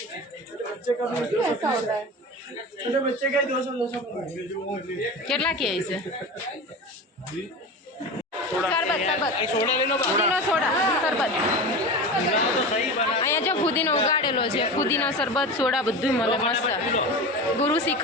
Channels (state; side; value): normal; both; correlation 0.28